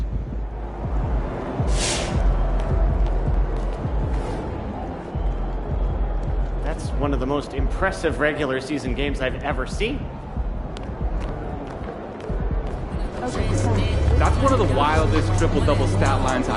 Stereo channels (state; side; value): identical; both; correlation 1.00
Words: That's one of the most impressive regular season games I've ever seen. That's one of the wildest triple-double stat lines